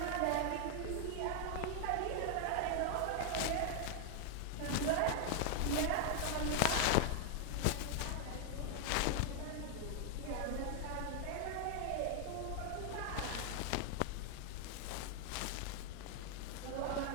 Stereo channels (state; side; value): different; both; correlation 0.00